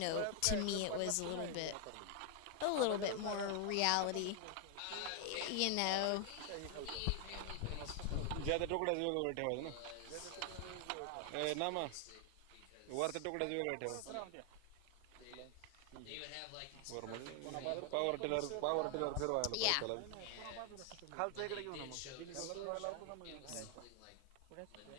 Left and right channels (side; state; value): both; different; correlation 0.00